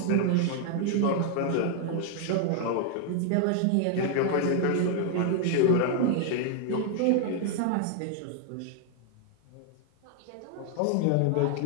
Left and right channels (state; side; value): different; both; correlation 0.00